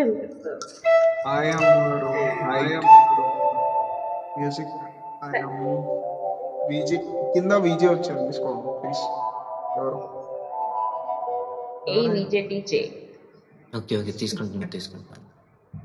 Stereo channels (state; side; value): identical; both; correlation 1.00